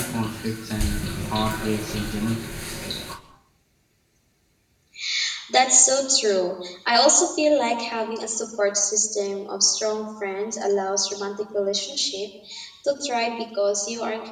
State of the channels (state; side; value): identical; both; correlation 1.00